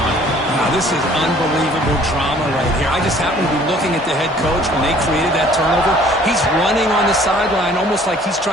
Wow, this is unbelievable drama right here. I just happen to be looking at the head coach when they created that turnover. He's running on the sideline almost like he's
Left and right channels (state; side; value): normal; both; correlation 0.55